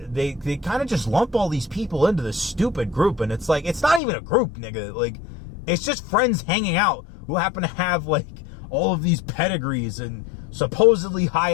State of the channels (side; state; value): right; drops out; at 4.0 s